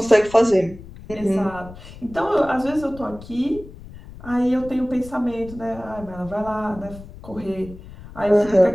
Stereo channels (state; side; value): noise; left; rumble, 17 dB below the sound